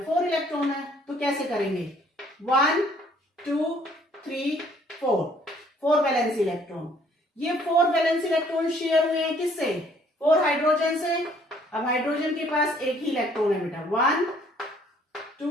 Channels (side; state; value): both; normal; correlation 0.61